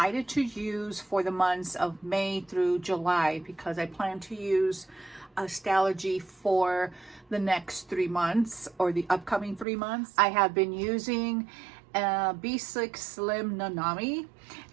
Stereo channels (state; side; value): drops out; left; at 9.7 s